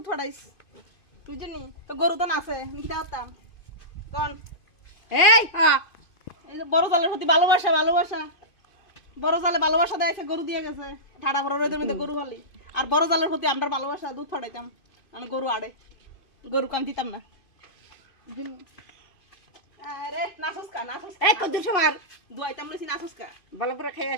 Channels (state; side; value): late; right; 2.5 ms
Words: হড়াইস বুঝছিনি তো গরু তো না আছে নিতে হতাম কোন এই এই যে বড় জালের প্রতি ভালোবাসা ভালোবাসা বড় জালে ভালোবাসা দেয় গরু দিয়ে গেছে ঠাড়া ভরা রইদের মধ্যে গরু ফালি আর বড় জালের প্রতি আমরা ভালোবাসা দুধ ফাটাইতাম আমি গরু আড়ে গরু কাম দিতাম না আরে নাসুসকা নাসুসকা এই কত সময় দুয়াইতাম লইছি নাসুসকা ভালো করে খাই